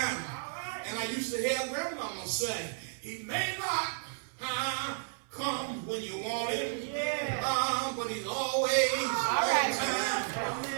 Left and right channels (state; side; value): silent; left; 56 dB below the other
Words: And I used to hear grandmama say, he may not come when you want him, but he's always on time.